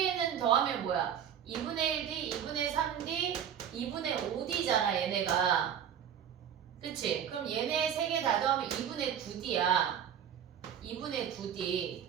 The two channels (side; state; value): left; quieter; 9.0 dB